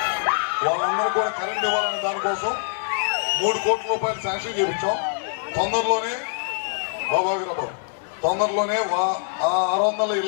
వాళ్ళందరూ కూడా కరెంట్ ఇవ్వాలనే దానికోసం 3 కోట్ల రూపాయలు శాంక్షన్ చేయించాం. తొందరలోనే తొందరలోనే ఆ 600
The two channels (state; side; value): silent; right; 63 dB below the other